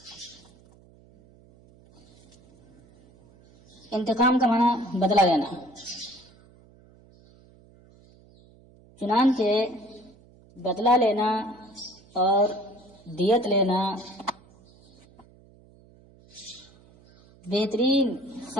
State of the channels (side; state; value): right; noise; hum, 27 dB below the sound